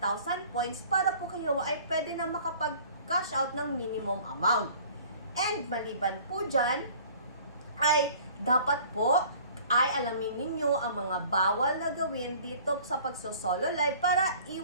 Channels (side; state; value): both; inverted; correlation -0.50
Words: points para po kayo ay pwede na makapag-cash out ng minimum amount. And maliban po dyan, ay dapat po ay alamin ninyo ang mga bawal na gawin dito sa pagsosolo live para